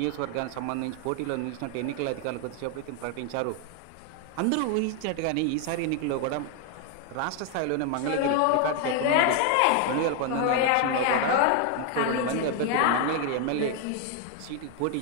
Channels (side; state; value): both; different; correlation 0.01